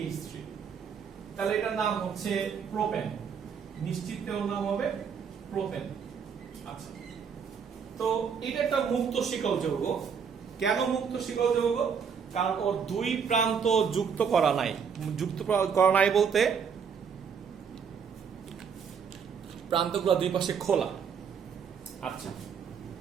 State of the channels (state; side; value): quieter; left; 6.7 dB